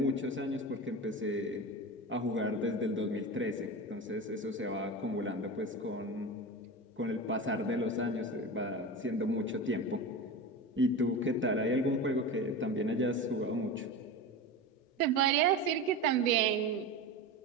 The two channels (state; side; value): normal; both; correlation 0.26